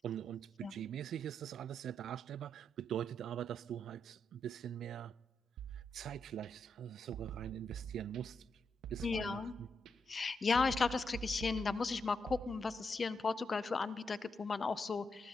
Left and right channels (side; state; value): both; normal; correlation 0.81